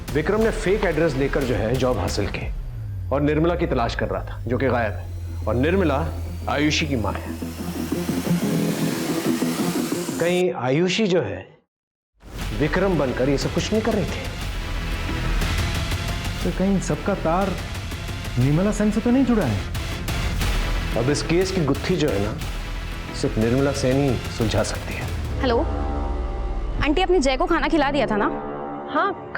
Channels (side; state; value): both; identical; correlation 1.00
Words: विक्रम ने फेक एड्रेस लेकर जो है जॉब हासिल की और निर्मला की तलाश कर रहा था जो कि गायब है, और निर्मला आयुषी की मां है। कहीं आयुषी जो है विक्रम बनकर ये सब कुछ नहीं कर रही थी? तो कहीं सबका तार निर्मला सेन से तो नहीं जुड़ा है? अब इस केस की गुत्थी जो है ना सिर्फ निर्मला सेन ही सुलझा सकती है। हेलो आंटी, आपने जय को खाना खिला दिया था ना? हाँ